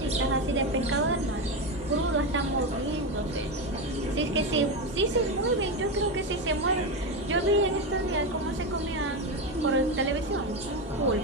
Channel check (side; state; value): both; normal; correlation 0.14